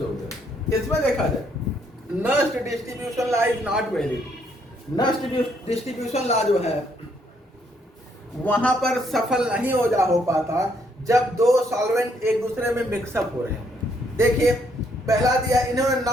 इसमें देखा जाए Nernst distribution law is not valid. Nernst distribution law जो है वहां पर सफल नहीं हो पाता जब दो सॉल्वेंट एक दूसरे में मिक्सअप हो रहे हैं। देखिए पहला दिया, इन्होंने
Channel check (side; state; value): both; normal; correlation 0.71